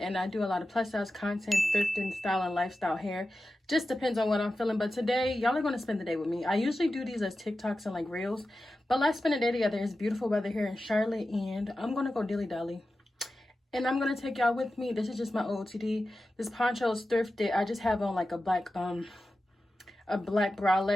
and I do a lot of plus size content, thrifting, style, and lifestyle hair. Just depends on what I'm feeling, but today y'all are going to spend the day with me. I usually do these as TikToks and like reels, but let's spend a day together. It's beautiful weather here in Charlotte and I'm going to go Dilly. And I'm going to take y'all with me. This is just my OOTD. This poncho is thrifted. I just have on like a black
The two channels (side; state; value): both; normal; correlation 0.93